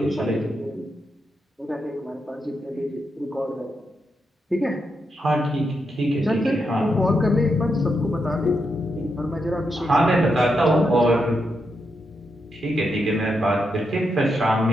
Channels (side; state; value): both; normal; correlation 0.83